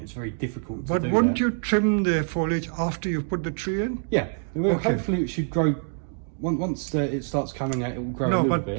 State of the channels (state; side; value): silent; left; 61 dB below the other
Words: it's very difficult to do that. But wouldn't you trim the foliage after you've put the tree in? Yeah. Well, hopefully it should grow once it starts coming out, it will grow a No, little but